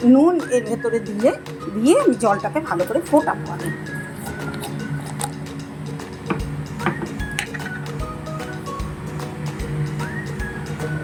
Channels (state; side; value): identical; both; correlation 1.00